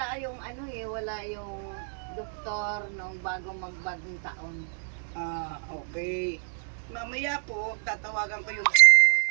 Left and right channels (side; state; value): left; silent; digital silence